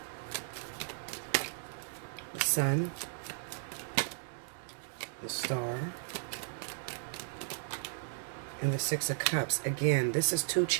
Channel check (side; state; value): left; silent; digital silence